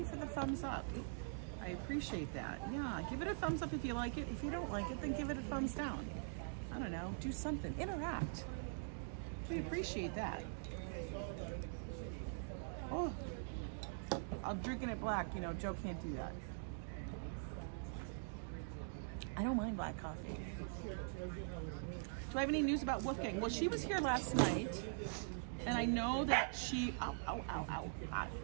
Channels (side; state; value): left; silent; digital silence